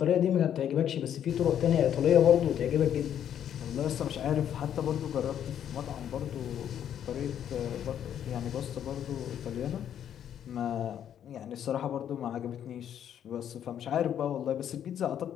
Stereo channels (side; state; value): right; quieter; 9.7 dB